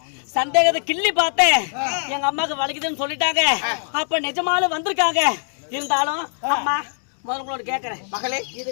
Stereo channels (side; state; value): right; silent; digital silence